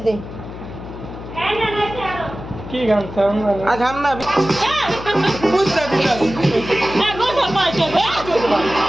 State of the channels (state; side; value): noise; left; hum, 12 dB below the sound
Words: দে। কি গান চাও না আ গান না বুঝতা দিলা না গো সবাই চলে